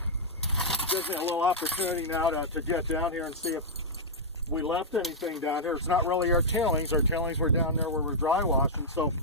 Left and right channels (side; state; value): both; normal; correlation -0.07